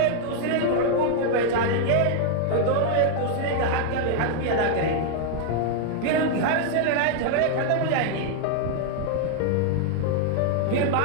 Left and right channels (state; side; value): different; both; correlation 0.00